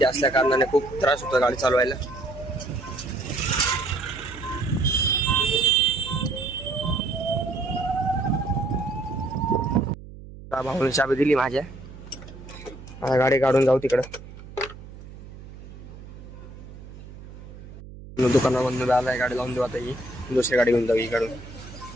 असल्या कारणाने खूप त्रास होतो गाडी चालवायला. भाऊने चाबी दिली माझ्या. आता गाडी काढून जाऊ तिकडं. दुकानामधून आलाय, गाडी लावून देऊ आता. ही दुसरी गाडी घेऊन जाऊ. इकडून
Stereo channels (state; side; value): noise; right; hum, 16 dB below the sound